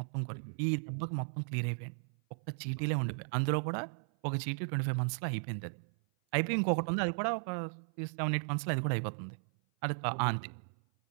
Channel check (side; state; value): left; silent; 54 dB below the other